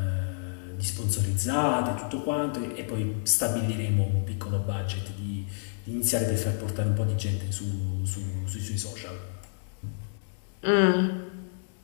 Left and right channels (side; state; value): right; silent; digital silence